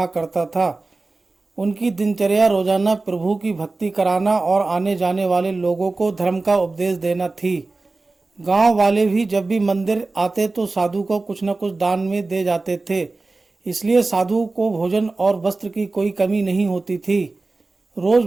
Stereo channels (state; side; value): quieter; left; 3.4 dB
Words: करता था। उनकी दिनचर्या रोजाना प्रभु की भक्ति कराना और आने जाने वाले लोगों को धर्म का उपदेश देना थी। गांव वाले भी जब भी मंदिर आते तो साधु को कुछ न कुछ दान में दे जाते थे, इसलिए साधु को भोजन और वस्त्र की कोई कमी नहीं होती थी। रोज